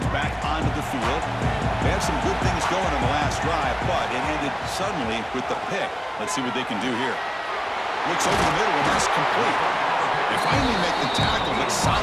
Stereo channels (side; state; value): both; identical; correlation 1.00